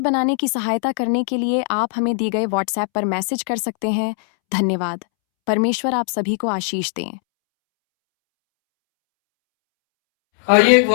बनाने की सहायता करने के लिए आप हमें दी गए व्हाट्सएप पर मैसेज कर सकते हैं। धन्यवाद। परमेश्वर आप सभी को आशीष दें। आइए एक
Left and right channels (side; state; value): right; silent; 66 dB below the other